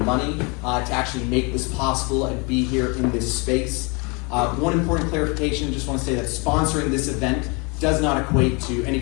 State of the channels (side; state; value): right; quieter; 30.7 dB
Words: money to actually make this possible and be here in this space. One important clarification, just want to say that sponsoring this event does not equate to any